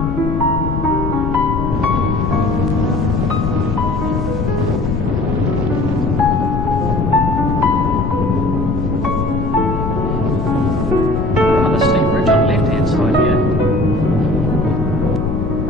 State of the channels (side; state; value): left; noise; rumble, 2 dB below the sound